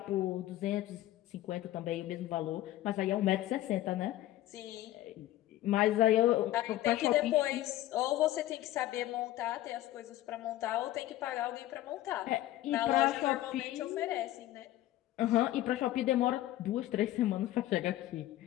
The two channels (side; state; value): right; quieter; 14.7 dB